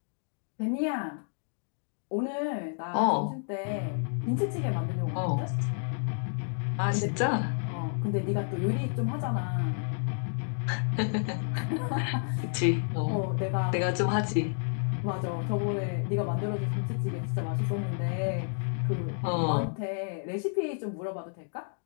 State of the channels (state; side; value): silent; right; digital silence